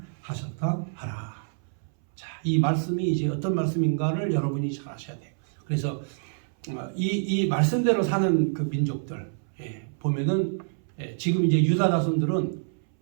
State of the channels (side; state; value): left; silent; 60 dB below the other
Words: 하셨다 하라. 자, 이 말씀이 이제 어떤 말씀인가를 여러분이 잘 아셔야 돼요. 그래서 이 말씀대로 사는 그 민족들 보면은 지금 이제 유다 자손들은